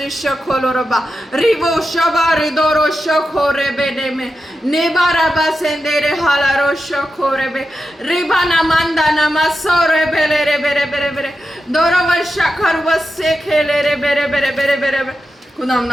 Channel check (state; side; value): normal; both; correlation 0.90